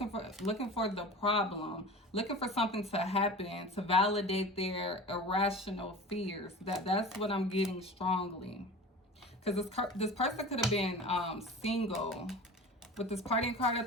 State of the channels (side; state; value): both; normal; correlation 0.35